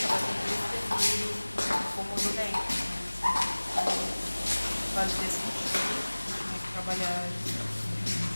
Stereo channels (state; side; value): inverted; both; correlation -1.00